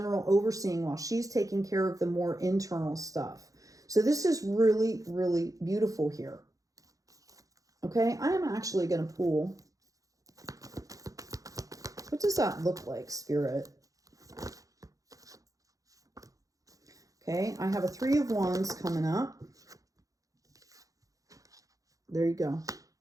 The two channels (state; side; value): late; left; 0.17 ms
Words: overseeing while she's taking care of the more internal stuff. So this is really, really beautiful here. Okay, I am actually going to pull. What does that look like, Spirit? Okay, I have a Three of Wands coming up. There you go.